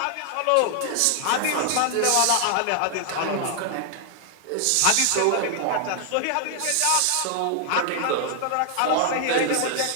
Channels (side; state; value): both; different; correlation 0.00